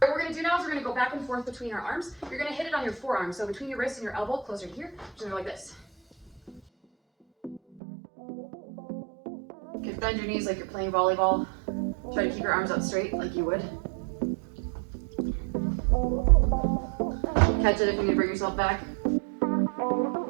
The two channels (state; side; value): drops out; left; at 7.8 s